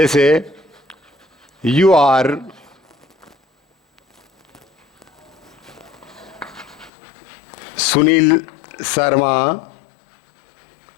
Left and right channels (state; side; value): drops out; right; at 6.9 s